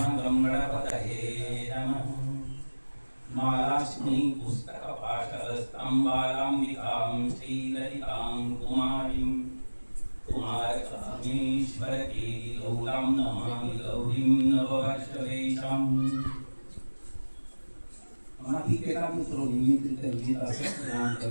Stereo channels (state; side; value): inverted; both; correlation -1.00